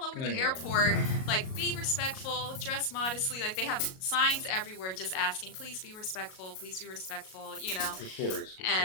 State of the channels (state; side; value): late; right; 38 ms